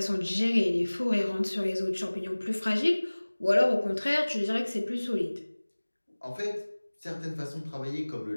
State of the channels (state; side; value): inverted; both; correlation -1.00